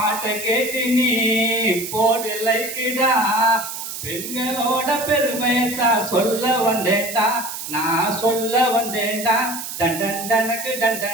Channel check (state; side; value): noise; right; hiss, 8 dB below the sound